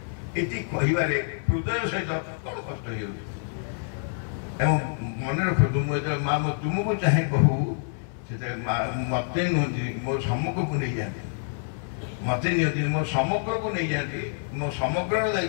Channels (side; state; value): right; silent; 59 dB below the other